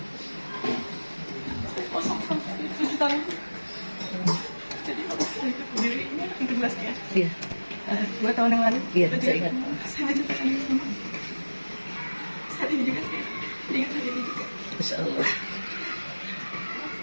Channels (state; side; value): inverted; both; correlation -1.00